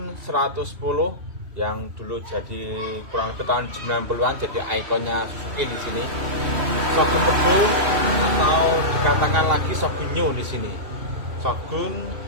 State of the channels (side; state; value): left; late; 2.8 ms